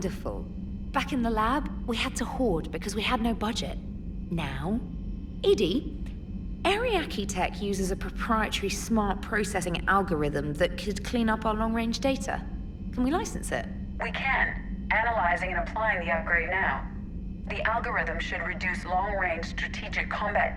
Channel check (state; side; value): identical; both; correlation 1.00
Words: Back in the lab, we had to hoard because we had no budget. Now, Edie, Ariake Tech uses a proprietary smart processing algorithm that could clean up our long-range data. Can we license it? We can. Analyzing and applying the upgrade now. The algorithm should reduce long-range strategic